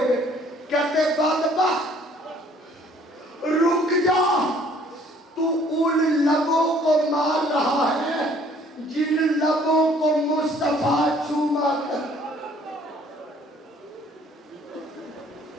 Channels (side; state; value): both; normal; correlation 0.58